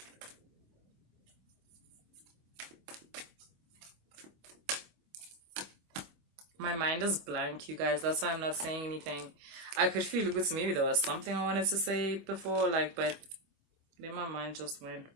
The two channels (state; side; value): late; left; 25 ms